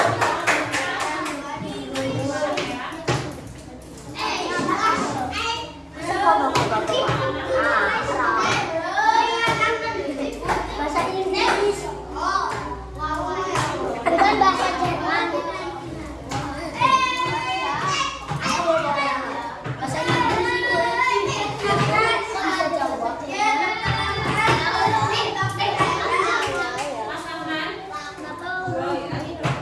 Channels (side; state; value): both; identical; correlation 1.00